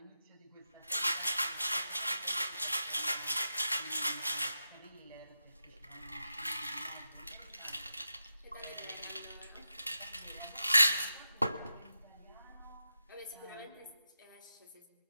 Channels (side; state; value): both; inverted; correlation -0.89